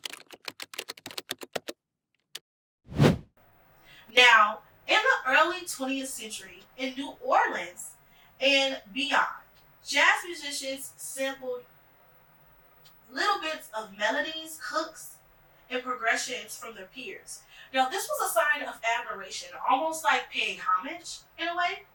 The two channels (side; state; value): both; identical; correlation 1.00